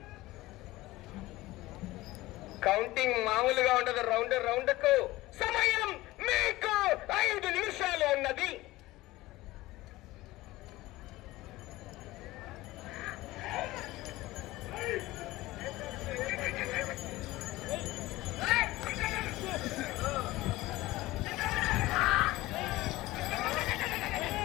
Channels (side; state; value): right; quieter; 18.4 dB